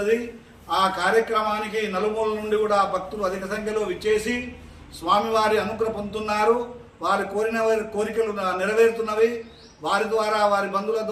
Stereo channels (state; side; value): identical; both; correlation 1.00